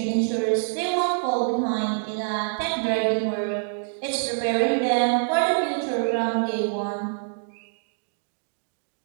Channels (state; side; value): silent; left; digital silence